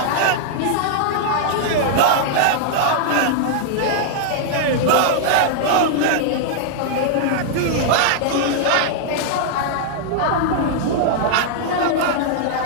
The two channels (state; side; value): different; both; correlation -0.01